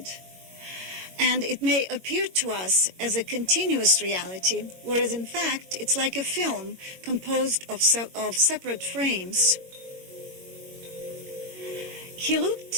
And it may appear to us as a continuous reality, whereas in fact it's like a film composed of separate frames. He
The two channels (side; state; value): left; late; 22 ms